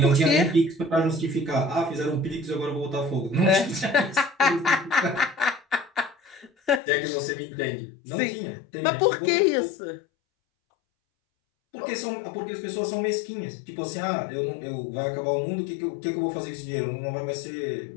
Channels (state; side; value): drops out; right; at 6.8 s